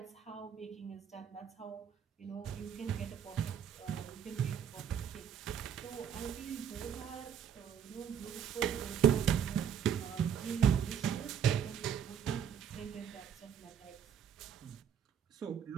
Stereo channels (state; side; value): quieter; left; 8.4 dB